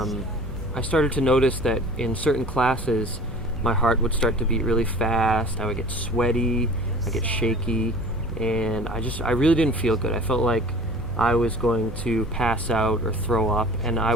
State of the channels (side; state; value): left; noise; hum, 12 dB below the sound